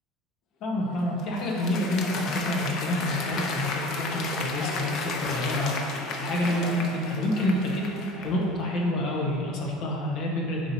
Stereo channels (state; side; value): normal; both; correlation 0.42